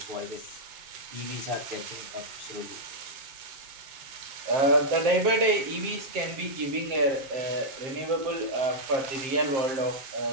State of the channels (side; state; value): left; late; 7.5 ms